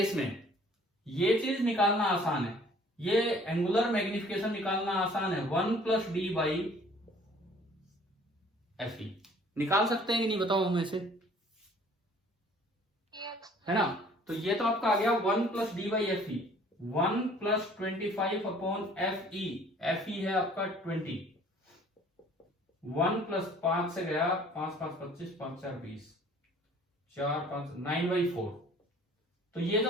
में ये चीज निकालना आसान है, ये एंगुलर मैग्निफिकेशन निकालना आसान है, 1+d/fe निकाल सकते हैं कि नहीं बताओ हमें से, Yes. है ना। तो ये तो आपका आ गया 1+d/fe, 1+25/fe, fe है आपका 20, 1+5 से गया 5 5 25, 5 4 20, 4 5 9/4। तो ये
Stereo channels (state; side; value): normal; both; correlation 0.54